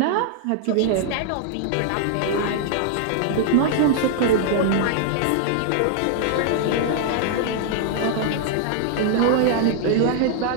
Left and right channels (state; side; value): different; both; correlation -0.01